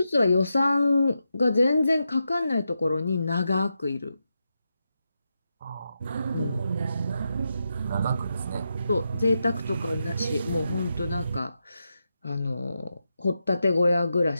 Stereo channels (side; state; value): both; inverted; correlation -0.87